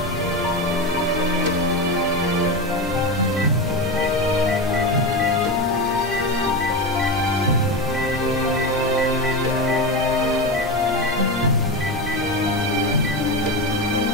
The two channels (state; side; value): noise; left; hum, 22 dB below the sound